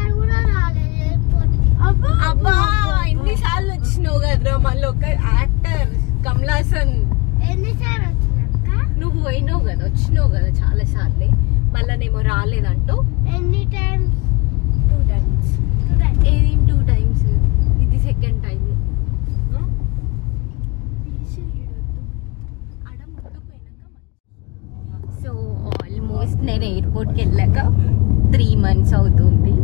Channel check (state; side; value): quieter; right; 26.2 dB